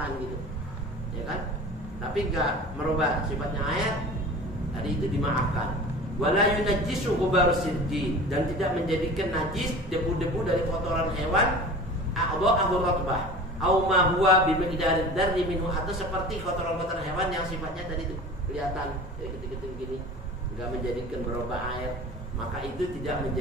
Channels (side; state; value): both; normal; correlation 0.38